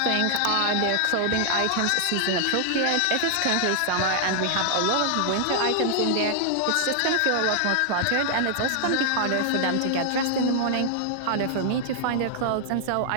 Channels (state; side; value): different; both; correlation -0.01